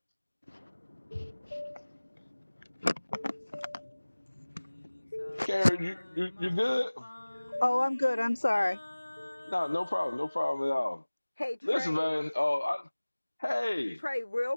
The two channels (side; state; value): both; inverted; correlation -1.00